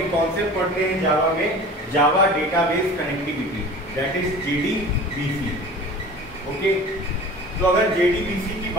कॉन्सेप्ट पढ़ते हैं जावा में, जावा database connectivity, that is JDBC। Okay, तो अगर JDBC की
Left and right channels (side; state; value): both; normal; correlation 0.40